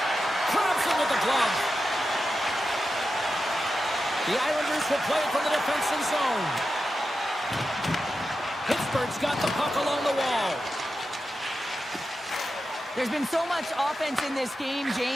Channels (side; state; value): both; normal; correlation 0.90